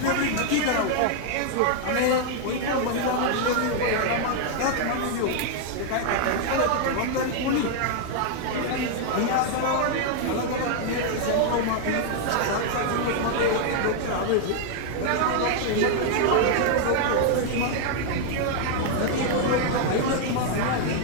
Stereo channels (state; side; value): different; both; correlation 0.00